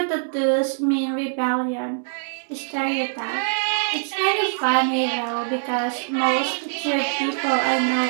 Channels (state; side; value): silent; left; digital silence